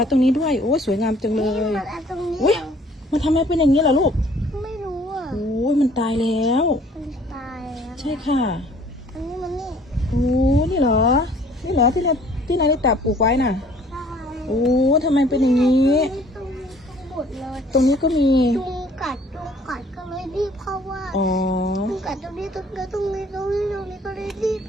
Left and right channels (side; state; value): both; normal; correlation 0.56